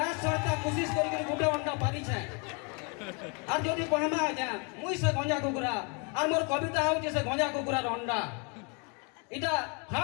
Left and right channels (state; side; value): quieter; right; 33.1 dB